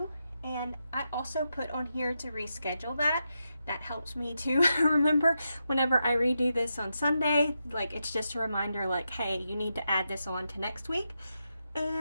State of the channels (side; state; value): both; inverted; correlation -0.86